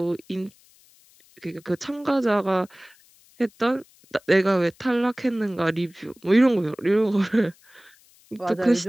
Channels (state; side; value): noise; left; hiss, 29 dB below the sound